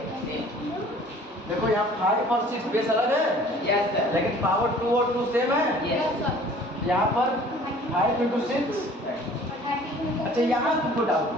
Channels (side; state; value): both; normal; correlation 0.50